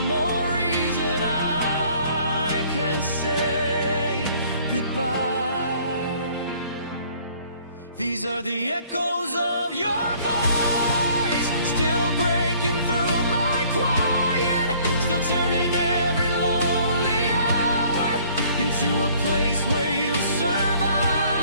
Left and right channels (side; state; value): both; inverted; correlation -0.57